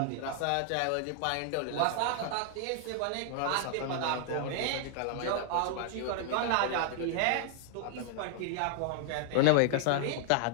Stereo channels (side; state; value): both; different; correlation 0.00